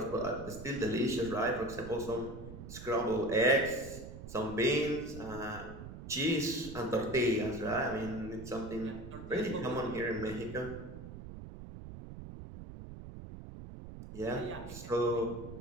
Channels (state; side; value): noise; right; rumble, 11 dB below the sound